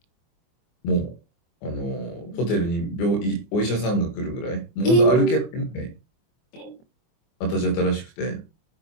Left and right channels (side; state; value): right; late; 24 ms